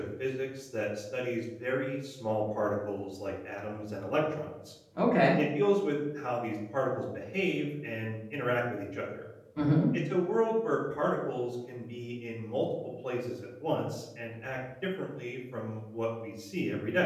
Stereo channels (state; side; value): identical; both; correlation 1.00